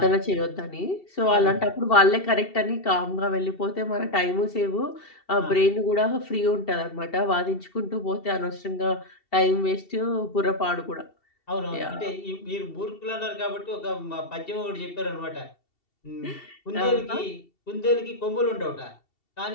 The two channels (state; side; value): late; right; 2.7 ms